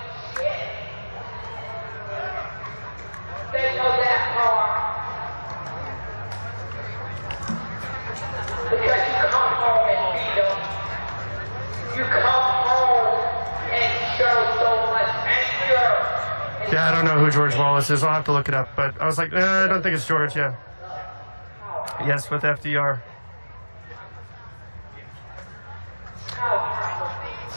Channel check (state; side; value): inverted; both; correlation -1.00